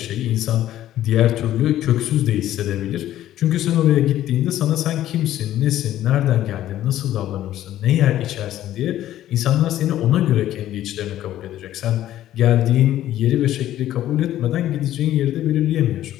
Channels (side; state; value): right; quieter; 13.0 dB